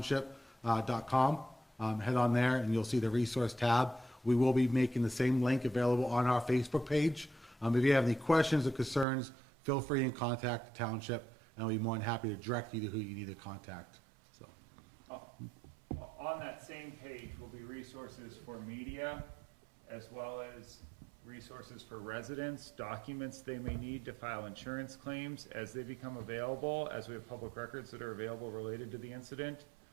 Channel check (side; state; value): left; drops out; at 9.1 s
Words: Head on there and you'll see the resource tab. We will be making the same link available on our Facebook page. If you have any questions or concerns, feel free and contact the township, and I'll be more than happy to direct you to who you need to contact. So, On that same page will be resources for media, as well as resources for residents, documents they may need to file insurance claims as they become available, as we have public records that are available related to the incident.